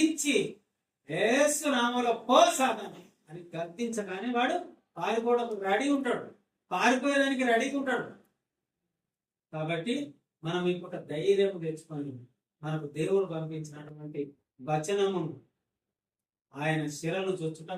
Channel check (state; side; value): identical; both; correlation 1.00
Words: యేసు నామములో పో సాతాను అని గద్దించగానే వాడు పారిపోవడానికి రెడీ ఉంటాడు, పారిపోయేదానికి రెడీగా ఉంటాడు. కాబట్టి మనం ఇంకొక ధైర్యం తెచ్చుకొని మనకు దేవుడు పంపించినటువంటి వచనము ఆయన శిరను